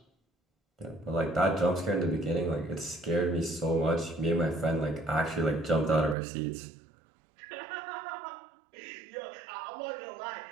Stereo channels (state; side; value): drops out; left; at 6.2 s